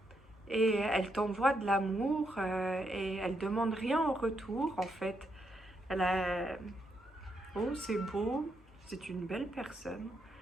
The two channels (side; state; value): both; normal; correlation 0.79